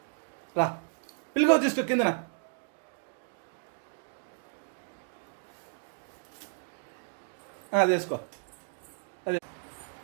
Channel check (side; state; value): left; silent; digital silence